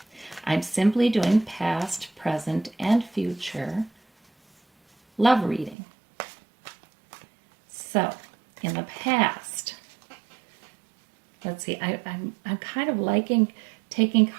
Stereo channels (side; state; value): left; drops out; at 5.8 s